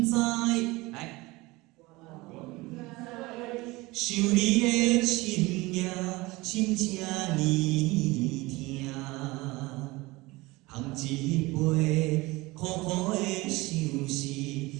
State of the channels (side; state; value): left; quieter; 21.7 dB